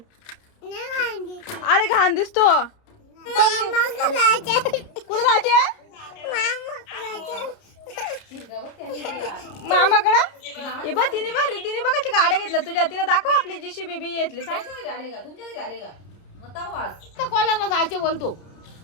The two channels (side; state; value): right; late; 30 ms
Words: अरे घाण दिसतो कुठे जायचे मामाकडे हे बघ तिने बघाची गाड्या घेतल्या तुझ्या तिला दाखव आपली JCB घेतली कोणाला जायचे बोलतो